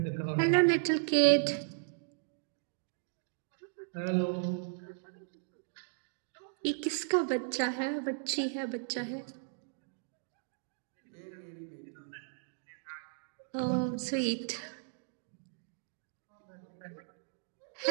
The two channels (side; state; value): left; silent; digital silence